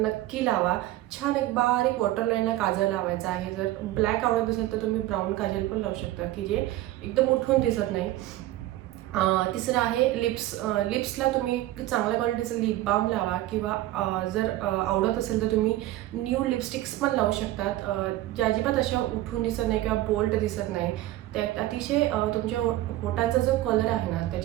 लावा. छान एक बारीक वॉटरलाईनला काजळ लावायचा आहे. जर ब्लॅक आवडत असेल तर तुम्ही ब्राऊन काजल पण लावू शकता की जे एकदम उठून दिसत नाही. तिसरं आहे लिप्सला तुम्ही चांगल्या क्वालिटीचं लिप बाम लावा किंवा जर आवडत असेल तर तुम्ही न्यू लिपस्टिक्स पण लावू शकतात, ज्या अजिबात अशा उठून दिसत नाही किंवा बोल्ड दिसत नाही. त्या अतिशय तुमच्या होटांचा जो कलर आहे ना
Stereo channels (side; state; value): left; quieter; 15.6 dB